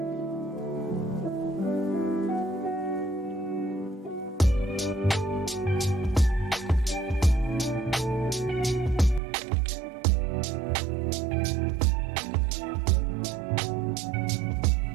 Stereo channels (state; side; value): drops out; left; at 9.2 s